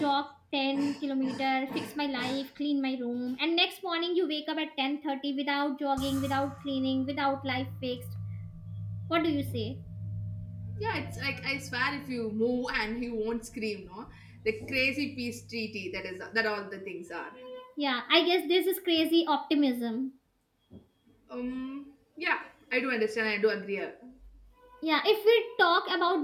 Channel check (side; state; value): both; identical; correlation 1.00